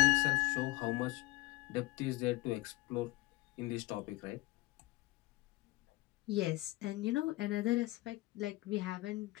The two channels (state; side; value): quieter; right; 20.5 dB